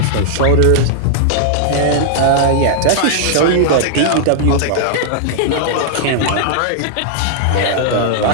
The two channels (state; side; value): different; both; correlation -0.01